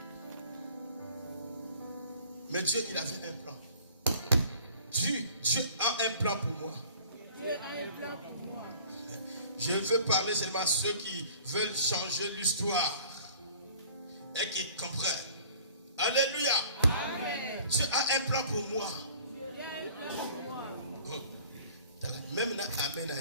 Mais Dieu, il avait un plan. Dieu a un plan pour moi. Dieu a un plan pour moi. Je veux parler seulement à ceux qui veulent changer l'histoire et qui comprennent. Alléluia. Amen. Dieu a un plan pour moi. Même na amen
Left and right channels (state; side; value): inverted; both; correlation -0.48